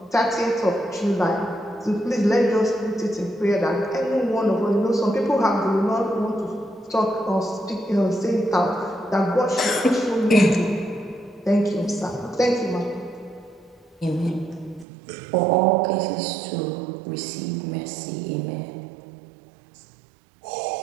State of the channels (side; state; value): left; drops out; at 14.9 s